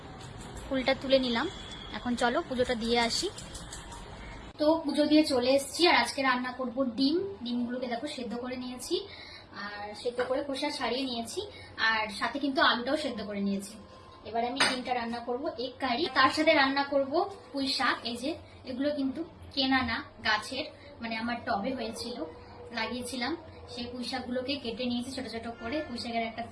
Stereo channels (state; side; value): identical; both; correlation 1.00